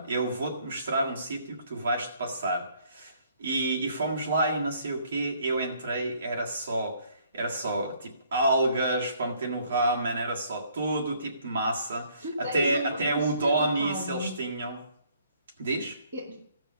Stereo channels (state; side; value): inverted; both; correlation -0.64